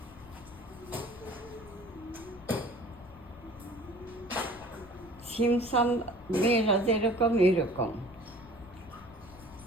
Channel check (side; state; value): left; noise; rumble, 20 dB below the sound